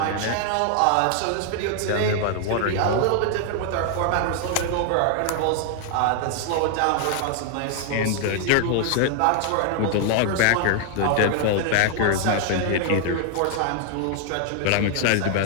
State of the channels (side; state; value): both; different; correlation 0.00